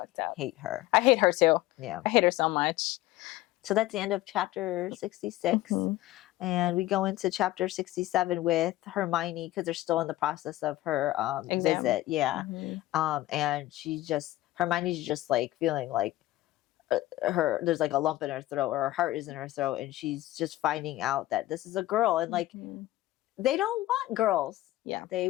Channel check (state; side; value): quieter; right; 16.5 dB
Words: up. Hate her. I hate her too. Yeah. I hate her so much. So that's the end of chapter 66. And we go into chapter 67 with Hermione because they're still in the process of her visit. Yeah. And Hermione's just like feeling like there's like a lump in her throat, or her heart is in her throat. And she's just finding out that this is a girl. And like, they don't want girls. Yeah. They